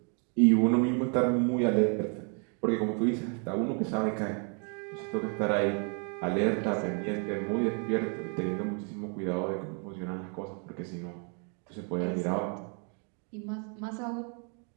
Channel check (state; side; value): quieter; left; 39.0 dB